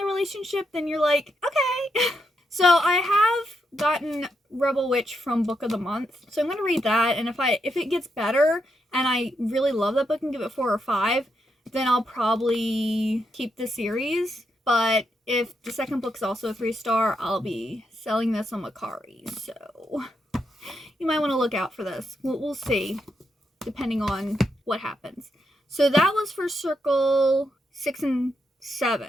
relationship, then you're like, okay. So I have gotten Rebel Witch from Book of the Month, so I'm going to read that, and if it gets better, and I really love that book and give it 4 or 5, then I'll probably keep the series. But if the second book's also a 3-star, I'll be selling this on Macari, so you might want to look out for this. We'll see, depending on what happens. So that was for Circle 6 and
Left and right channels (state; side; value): normal; both; correlation 0.81